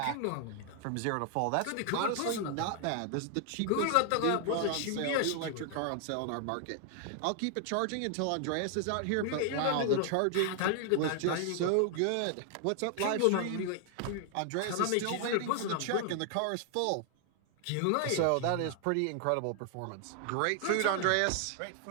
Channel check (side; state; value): both; different; correlation 0.00